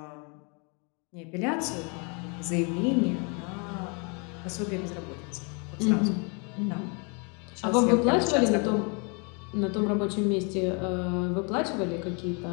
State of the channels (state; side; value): quieter; right; 34.5 dB